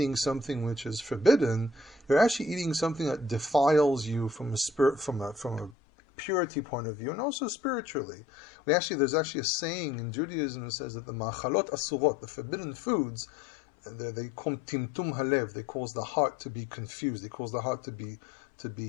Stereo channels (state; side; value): drops out; right; at 5.8 s